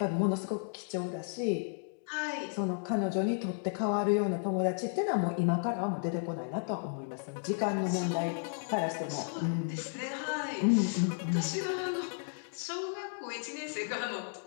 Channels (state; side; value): silent; right; digital silence